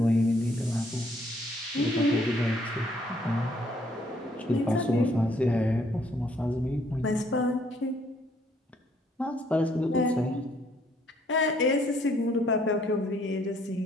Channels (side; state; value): both; normal; correlation 0.66